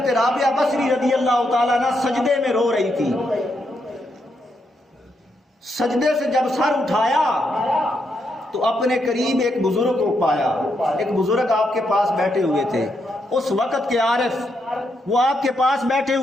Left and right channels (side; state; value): both; normal; correlation 0.80